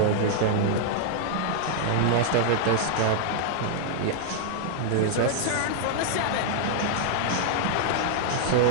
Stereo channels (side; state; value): both; different; correlation -0.01